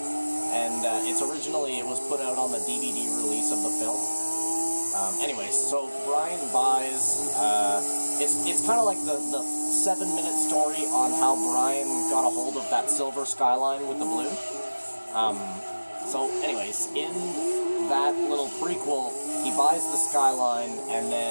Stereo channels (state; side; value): inverted; both; correlation -1.00